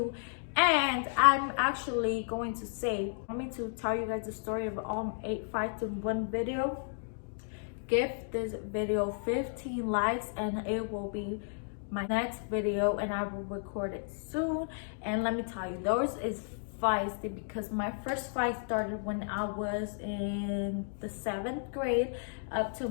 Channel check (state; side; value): silent; right; digital silence